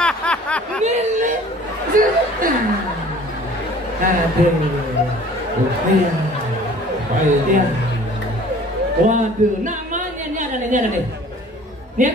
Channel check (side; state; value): both; normal; correlation 0.49